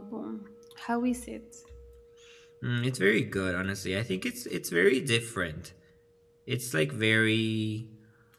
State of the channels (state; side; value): identical; both; correlation 1.00